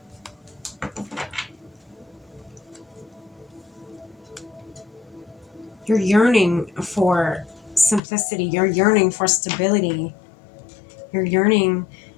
You're yearning for simplicity. You're yearning for stability. You're yearning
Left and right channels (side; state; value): right; drops out; at 8.0 s